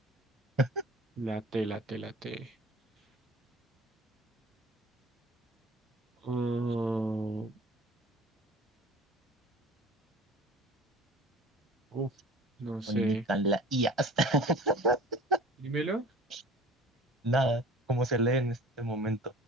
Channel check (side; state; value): both; normal; correlation 0.44